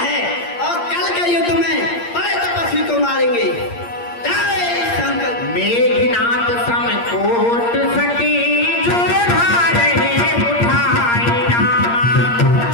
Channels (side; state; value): right; late; 8.6 ms